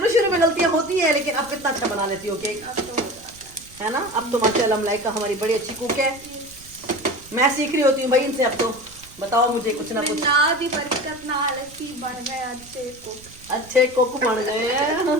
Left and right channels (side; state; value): right; noise; rumble, 22 dB below the sound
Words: में गलतियां होती हैं, लेकिन अब कितना अच्छा बना लेती हो केक, अब तो हो जाता है ना। अब तो माशाल्लाह मलाइका हमारी बड़ी अच्छी कुक है। मैं सीख रही होती हूँ भाई इनसे। अब तो बताओ मुझे कुछ ना है। कुछ। ना दी बरकत ना आलसी बन गए अच्छे कुक बन गए हैं